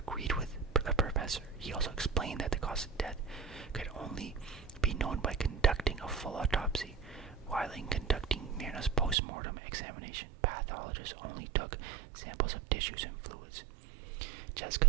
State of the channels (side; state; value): left; drops out; at 9.2 s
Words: with the professor. He also explained that the cause of death could only be known by conducting a full autopsy. While in conducting Mirna's post-mortem examination, pathologists only took samples of tissues and fluids.